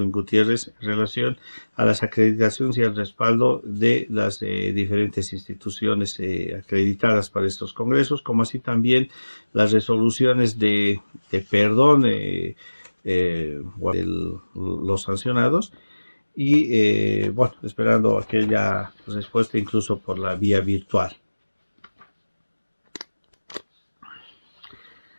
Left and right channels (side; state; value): both; inverted; correlation -1.00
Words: Gutiérrez en relación a las acreditaciones y al respaldo de las diferentes instituciones acreditadas para estos congresos, como así también las resoluciones de perdón los sancionados y, bueno, esperando aquella respuesta incluso por la vía virtual.